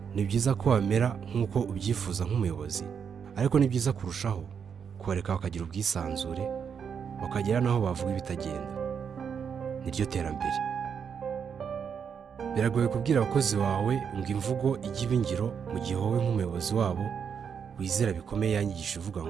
Ni byiza ko wamera nk'uko ubyifuza nk'umuyobozi, ariko ni byiza kurushaho kubareka bakagira ubwisanzure, bakagera n'aho bavuga ibitagenda. Niryo terambere. Biragoye kubwira abakozi bawe ngo imvugo ijye iba ingiro, mu gihe wowe nk'umuyobozi wabo wizera bikomeye yanyigisha uvuga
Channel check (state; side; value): quieter; left; 7.0 dB